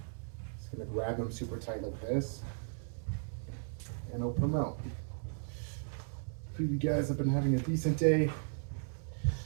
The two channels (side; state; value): left; silent; digital silence